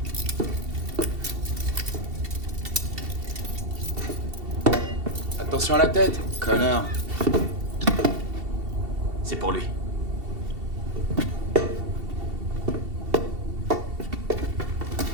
Attention à la tête, connard. C'est pour lui.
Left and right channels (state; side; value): late; left; 2.7 ms